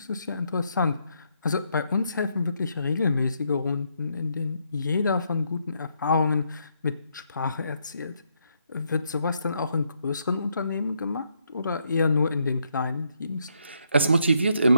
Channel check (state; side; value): inverted; both; correlation -0.76